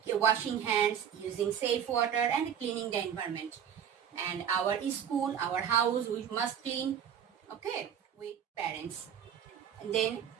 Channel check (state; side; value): quieter; left; 8.7 dB